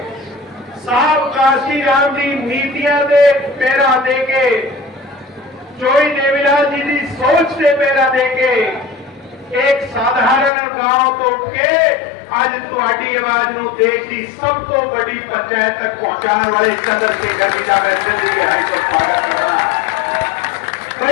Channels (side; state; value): right; drops out; at 10.5 s